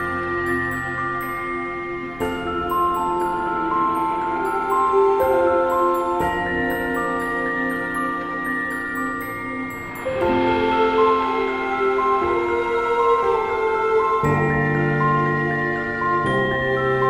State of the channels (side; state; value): left; noise; rumble, 20 dB below the sound